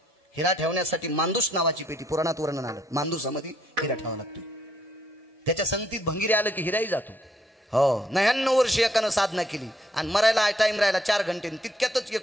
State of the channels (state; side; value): normal; both; correlation 0.70